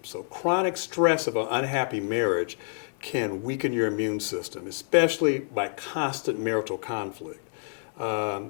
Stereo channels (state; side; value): silent; right; 60 dB below the other